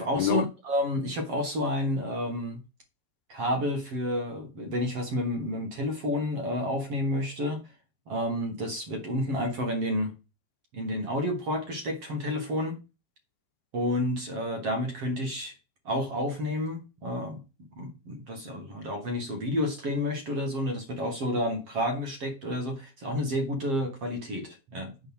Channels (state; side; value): late; left; 7.5 ms